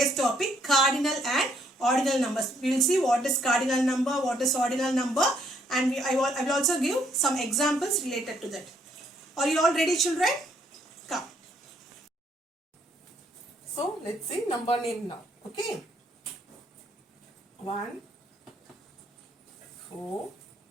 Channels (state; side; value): normal; both; correlation 0.68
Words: topic, cardinal and ordinal numbers. We will see what is cardinal number, what is ordinal number, and I will also give some examples related to that. Are you all ready, children? Come. So let's see number name now. Okay. 1, 4,